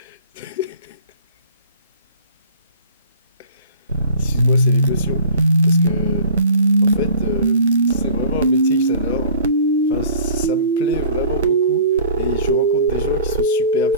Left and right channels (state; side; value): inverted; both; correlation -0.46